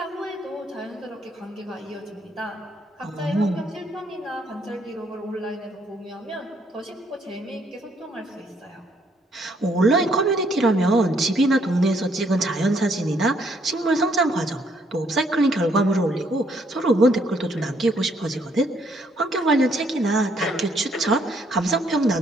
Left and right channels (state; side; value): normal; both; correlation 0.69